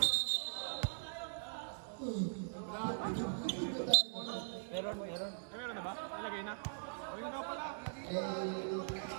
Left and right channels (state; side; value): silent; left; digital silence